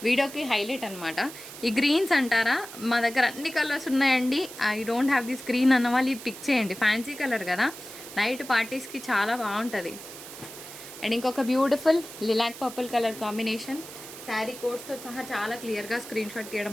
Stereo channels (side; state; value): right; noise; hiss, 14 dB below the sound